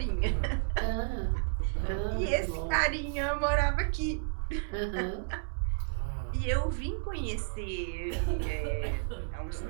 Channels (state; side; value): silent; left; digital silence